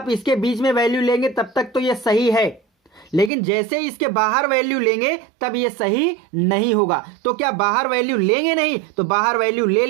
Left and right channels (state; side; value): drops out; left; at 3.3 s